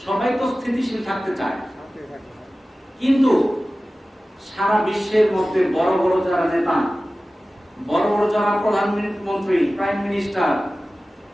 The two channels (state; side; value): normal; both; correlation 0.96